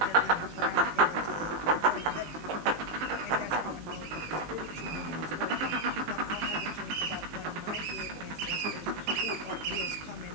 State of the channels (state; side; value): late; left; 19 ms